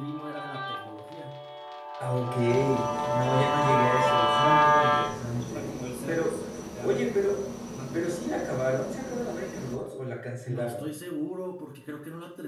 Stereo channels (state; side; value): identical; both; correlation 1.00